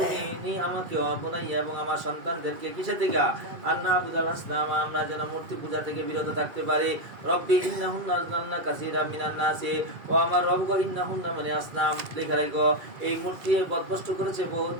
নি আমাকে অবনাইয়া এবং আমার সন্তানদেরকে কিসে থেকে আন্না আবুদাল আসনাম আমরা যেন মূর্তি পূজা থেকে বিরত থাকতে পারি রব্বি ইন্নাহুন্না আযলালনা কাসীরা মিনান নাসি ও আমার রব গো ইন্নাহুন্না মানে আসনাম লেখা রাখো এই মূর্তি বদভস্ত করেছে বহুত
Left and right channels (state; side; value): late; left; 2.3 ms